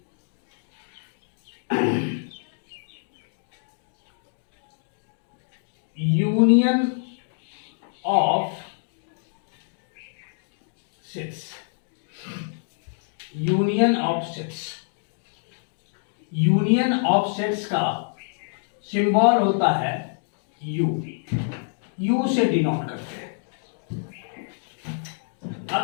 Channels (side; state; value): right; silent; digital silence